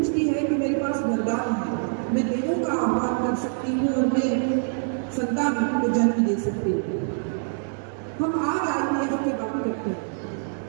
है कि मेरे पास वरदान है, मैं देवों का आह्वान कर सकती हूँ और मैं संतान को जन्म दे सकती हूँ। हम आज IVF की बात करते हैं,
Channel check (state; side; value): silent; left; 62 dB below the other